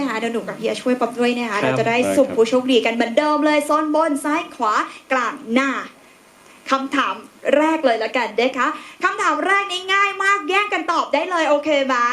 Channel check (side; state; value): both; identical; correlation 1.00